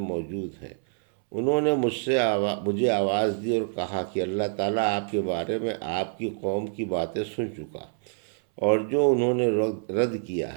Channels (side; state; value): left; silent; 60 dB below the other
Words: ہیں۔ انہوں نے مجھے آواز دی اور کہا کہ اللہ تعالیٰ آپ کے بارے میں آپ کی قوم کی باتیں سن چکا، اور جو انہوں نے رد کیا